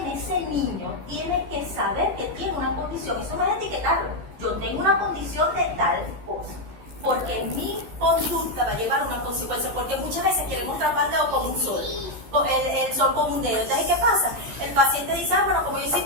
niño tiene que saber que tiene una condición. Eso no es etiquetarlo. Yo tengo una condición de tal cosa, porque mi conducta va a llevar una consecuencia, porque muchas veces queremos tapar el dedo como un sol, el sol como un dedo. Entonces, ¿qué pasa? El paciente dice: bueno, como yo soy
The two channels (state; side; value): late; left; 13 ms